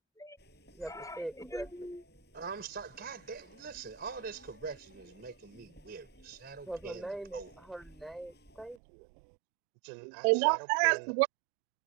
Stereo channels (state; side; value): drops out; left; at 8.8 s